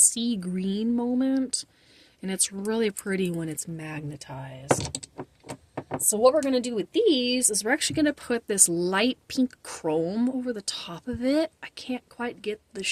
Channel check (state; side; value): identical; both; correlation 1.00